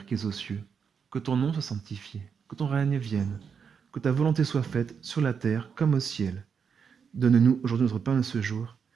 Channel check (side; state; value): left; quieter; 6.5 dB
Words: qui es aux cieux, que ton nom soit sanctifié, que ton règne vienne, que ta volonté soit faite sur la terre comme au ciel. Donne-nous aujourd'hui notre pain de ce jour.